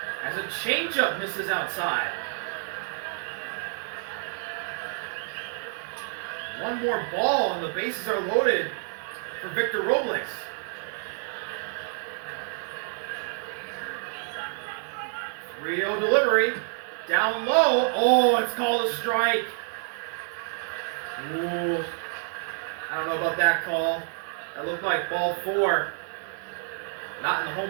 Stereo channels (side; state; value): left; silent; 56 dB below the other